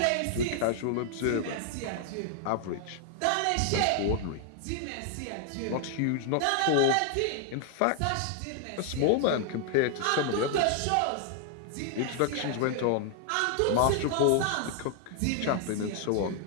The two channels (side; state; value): both; different; correlation 0.00